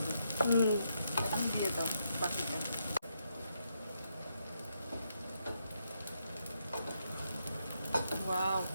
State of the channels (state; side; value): inverted; both; correlation -0.79